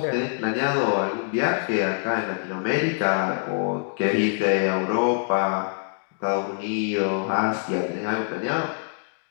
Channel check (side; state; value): right; silent; digital silence